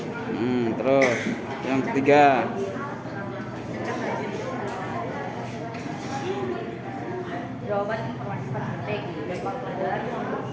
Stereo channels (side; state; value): both; identical; correlation 1.00